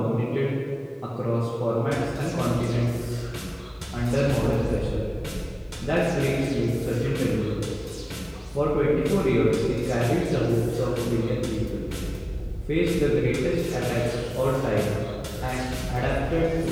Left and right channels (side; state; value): both; identical; correlation 1.00